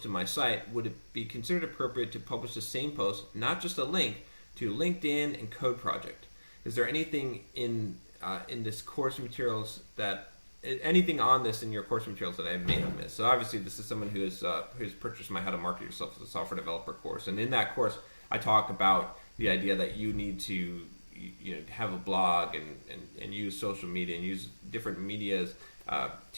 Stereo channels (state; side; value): inverted; both; correlation -1.00